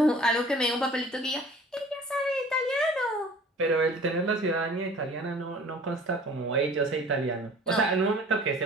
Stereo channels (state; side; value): normal; both; correlation 0.48